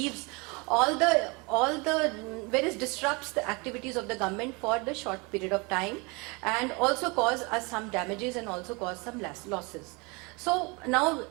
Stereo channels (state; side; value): quieter; left; 28.4 dB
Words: all where it disrupts the activities of the government for the short period of time, and also cause us some damages and also cause some losses. So now,